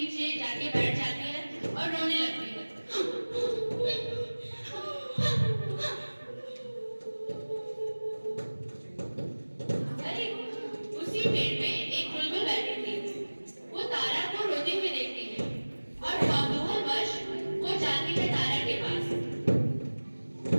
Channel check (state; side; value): inverted; both; correlation -1.00